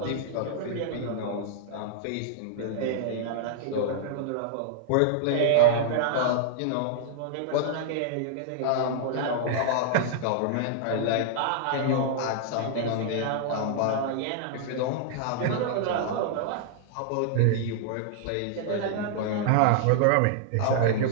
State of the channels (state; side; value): different; both; correlation -0.01